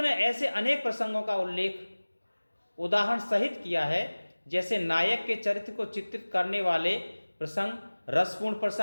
ने ऐसे अनेक प्रसंगों का उल्लेख उदाहरण सहित किया है, जैसे नायक के चरित्र को चित्रित करने वाले प्रसंग, रसपूर्ण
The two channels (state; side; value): inverted; both; correlation -1.00